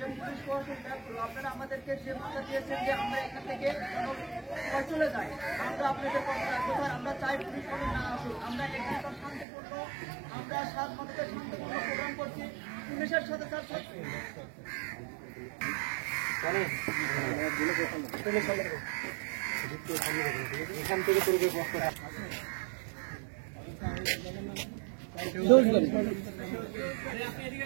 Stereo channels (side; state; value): left; drops out; at 9.5 s